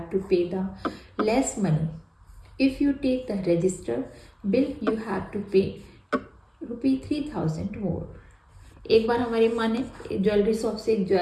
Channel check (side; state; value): both; identical; correlation 1.00